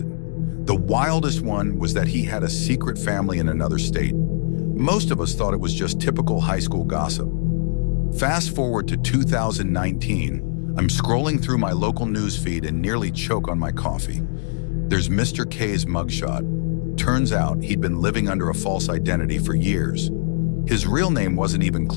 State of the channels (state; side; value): silent; right; digital silence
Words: The wildest one was that he had a secret family in another state. Most of us thought it was just typical high school gossip. Fast forward to 2019, I'm scrolling through my local news feed and nearly choke on my coffee. There's Mr. K's mugshot. Turns out he'd been living under a false identity for years. His real name wasn't even